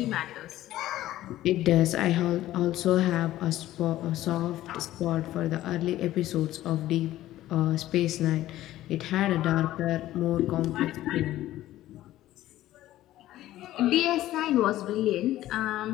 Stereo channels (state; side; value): quieter; right; 14.6 dB